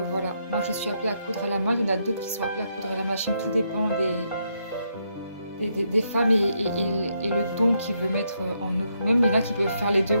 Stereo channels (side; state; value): both; inverted; correlation -0.78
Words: voilà, moi je suis appelée à coudre à la main, il y en a d'autres qui sont appelés à coudre à la machine, tout dépend des femmes et le don qu'il veut mettre en nous. Même il y en a qui peuvent faire les deux